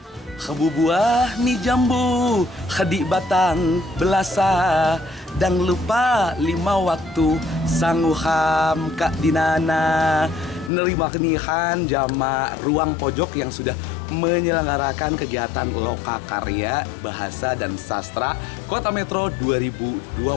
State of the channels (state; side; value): drops out; right; at 10.7 s